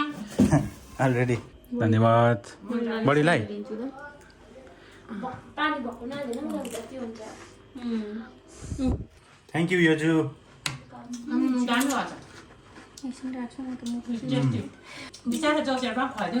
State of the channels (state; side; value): identical; both; correlation 1.00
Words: ऑलरेडी। धन्यवाद बढीलाई। Thank you योजु। बिचारा जोसेफ